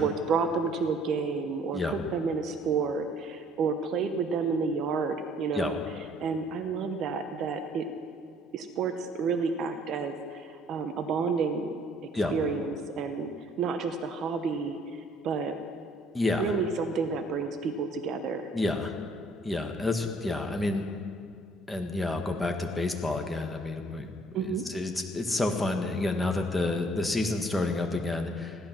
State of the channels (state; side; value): normal; both; correlation 0.60